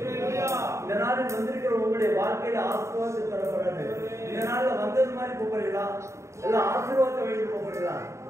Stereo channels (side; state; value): left; late; 0.14 ms